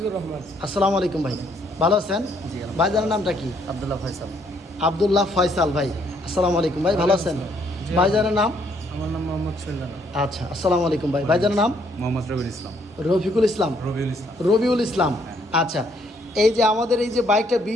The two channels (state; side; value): normal; both; correlation 0.68